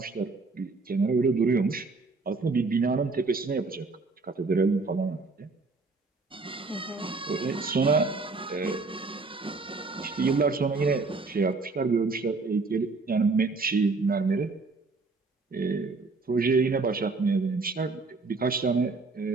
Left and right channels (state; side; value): quieter; left; 3.9 dB